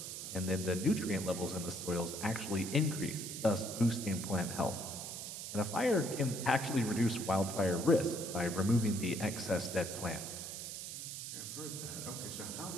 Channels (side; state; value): right; noise; hiss, 7 dB below the sound